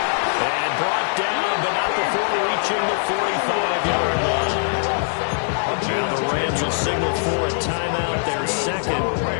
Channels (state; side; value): silent; right; 64 dB below the other